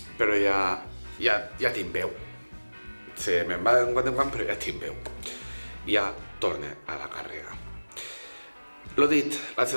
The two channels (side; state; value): both; inverted; correlation -1.00